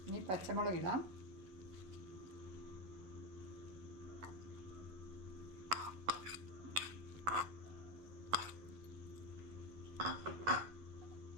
ഇനി പച്ചമുളക് ഇടാം.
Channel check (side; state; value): left; late; 11 ms